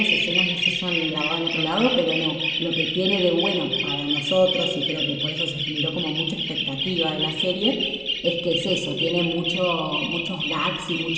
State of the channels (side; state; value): both; identical; correlation 1.00